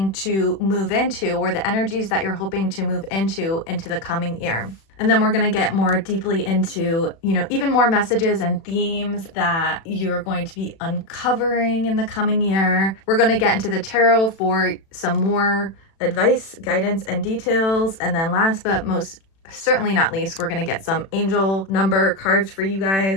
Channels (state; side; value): late; right; 36 ms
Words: to move into, or the energies that you're hoping to move into the coming year. And then we're going to get more deeply into, even more messages and themes that you're going to be uncovering in the coming year. We're going to get into the tarot for some more advice, guidance, and details. And then last but most certainly not least, we're going to get some angel number cards for you